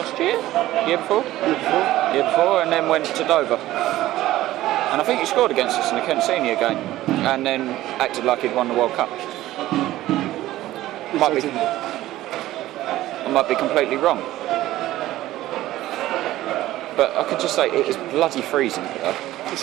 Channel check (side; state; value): left; quieter; 15.4 dB